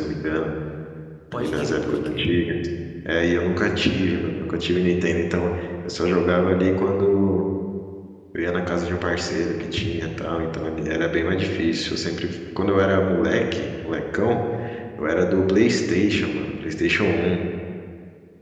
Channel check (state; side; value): identical; both; correlation 1.00